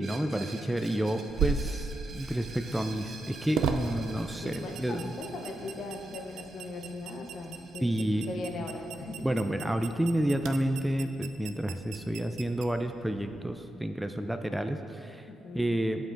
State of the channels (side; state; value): both; normal; correlation 0.88